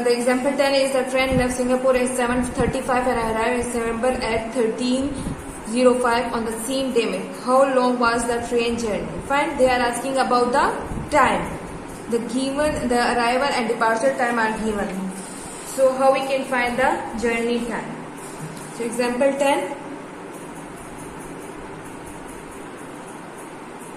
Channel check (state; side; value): identical; both; correlation 1.00